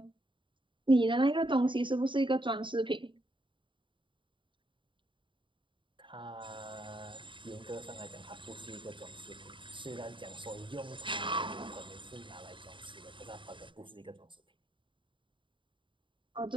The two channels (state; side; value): late; left; 0.24 ms